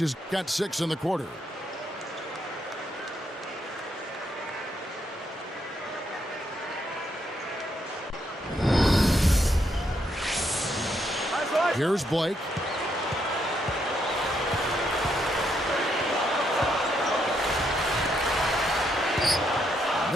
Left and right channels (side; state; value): both; normal; correlation 0.76